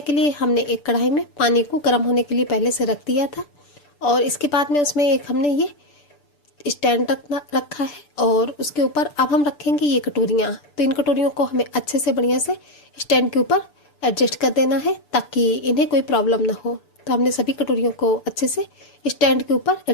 के लिए हमने एक कढ़ाई में पानी को गर्म होने के लिए पहले से रख दिया था, और इसके बाद में उसमें एक हमने ये स्टैंड रखा है और उसके ऊपर अब हम रखेंगे ये कटोरियाँ। तो इन कटोरियों को हमें अच्छे से बढ़िया से स्टैंड के ऊपर एडजस्ट कर देना है, ताकि इन्हें कोई प्रॉब्लम ना हो। तो हमने सभी कटोरियों को अच्छे से स्टैंड के ऊपर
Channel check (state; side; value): late; right; 6.8 ms